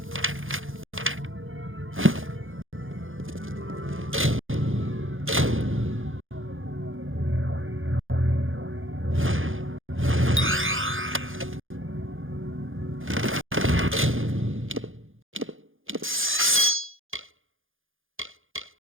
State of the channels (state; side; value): late; left; 0.59 ms